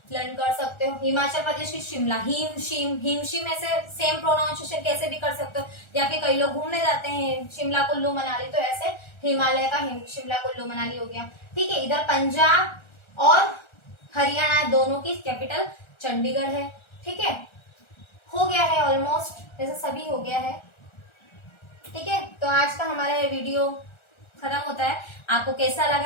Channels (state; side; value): late; right; 1.3 ms